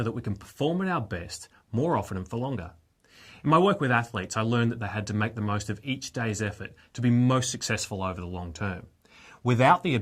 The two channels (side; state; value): both; identical; correlation 1.00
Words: that we can perform at our best more often and for longer? In my work with athletes, I learned that they had to make the most of each day's effort to be most successful over the long term. Without the